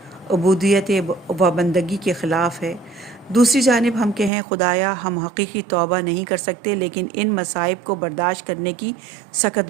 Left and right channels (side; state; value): left; drops out; at 4.3 s